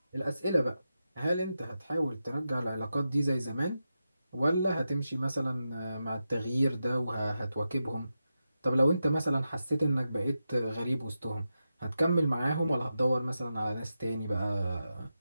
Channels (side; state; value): both; inverted; correlation -0.89